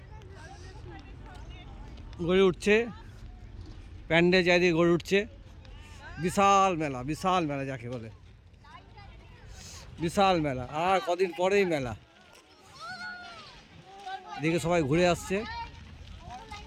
গড়ে উঠছে, প্যান্ডেল চারিদিকে গড়ে উঠছে। বিশাল মেলা, বিশাল মেলা যাকে বলে, বিশাল মেলা। আর কদিন পরেই মেলা। এদিকে সবাই ঘুরে আসছে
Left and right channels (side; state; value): both; identical; correlation 1.00